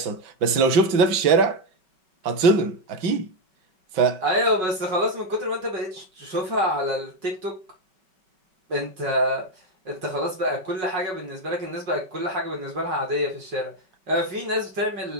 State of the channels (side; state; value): left; late; 5.3 ms